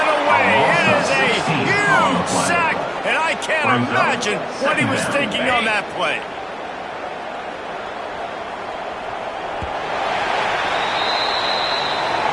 away. It is a huge sack, and I can't imagine what he was thinking on that play.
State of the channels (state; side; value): identical; both; correlation 1.00